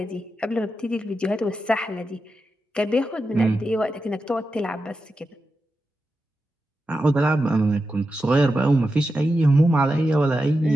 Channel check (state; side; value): normal; both; correlation 0.89